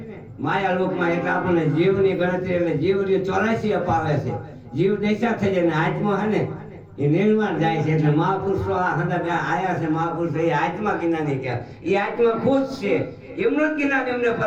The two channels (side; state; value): both; identical; correlation 1.00